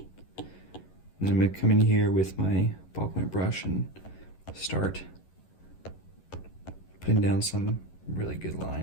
then I'm gonna come in here with my ballpoint brush and start putting down some really good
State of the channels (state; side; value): late; right; 11 ms